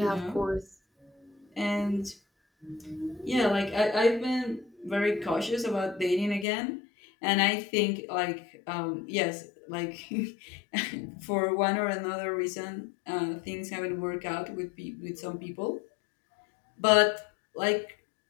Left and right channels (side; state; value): right; drops out; at 6.5 s